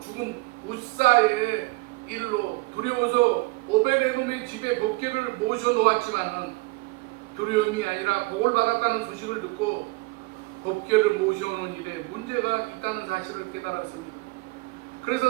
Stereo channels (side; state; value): left; quieter; 23.6 dB